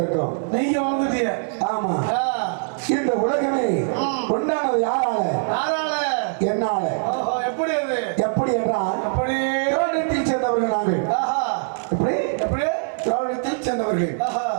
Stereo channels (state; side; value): silent; left; 64 dB below the other